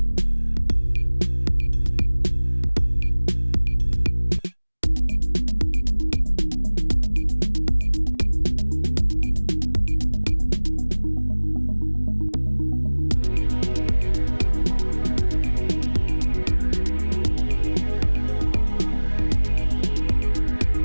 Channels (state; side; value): inverted; both; correlation -1.00